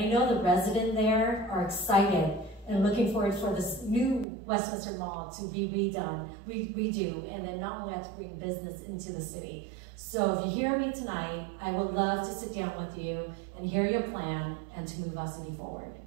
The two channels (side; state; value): left; drops out; at 4.2 s